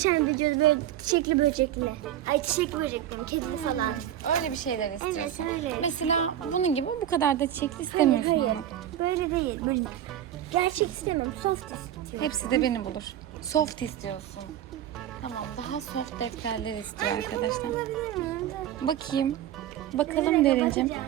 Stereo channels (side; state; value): left; quieter; 11.4 dB